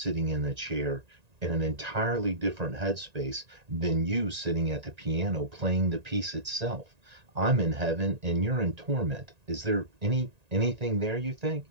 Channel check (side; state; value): left; late; 1.9 ms